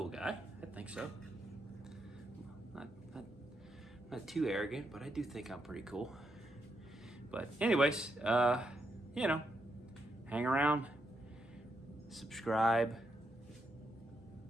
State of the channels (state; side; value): normal; both; correlation 0.81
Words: guy, I think so. Not too arrogant, but I do think I'm pretty cool. But anyways, you know, hang around, subscribe.